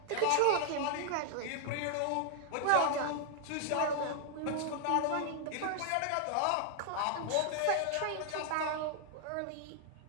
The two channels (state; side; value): different; both; correlation 0.00